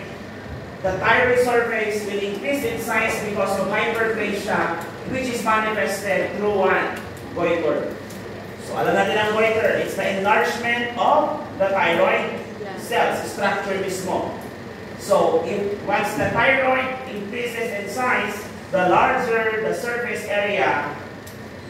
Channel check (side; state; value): both; identical; correlation 1.00